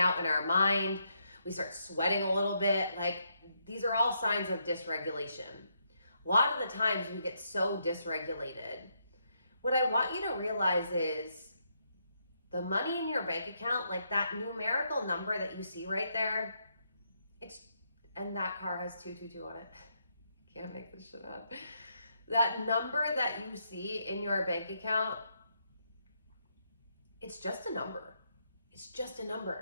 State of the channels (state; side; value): inverted; both; correlation -0.77